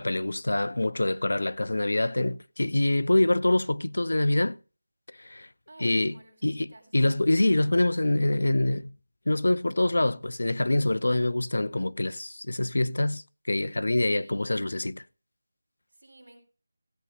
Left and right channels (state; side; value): inverted; both; correlation -1.00